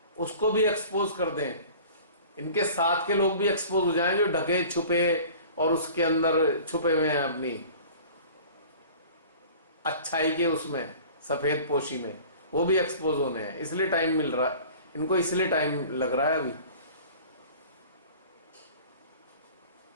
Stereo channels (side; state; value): both; inverted; correlation -0.44